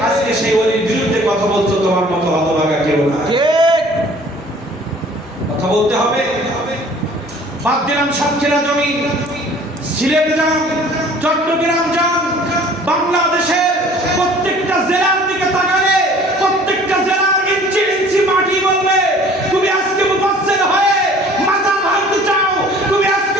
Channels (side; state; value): both; normal; correlation 0.51